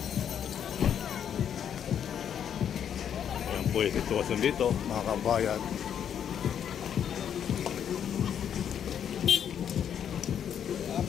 Ayan po yung sitwasyon dito, mga kabayan.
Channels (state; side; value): quieter; right; 8.8 dB